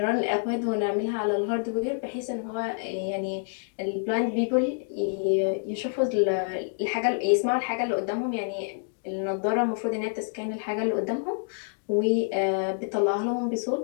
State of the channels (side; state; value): right; silent; digital silence